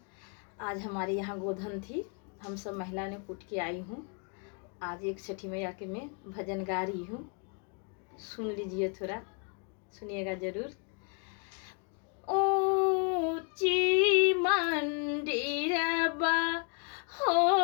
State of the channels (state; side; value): quieter; right; 37.8 dB